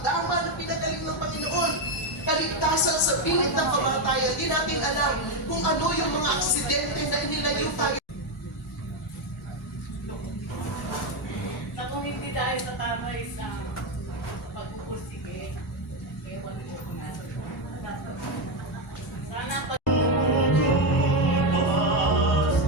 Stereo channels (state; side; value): normal; both; correlation 0.08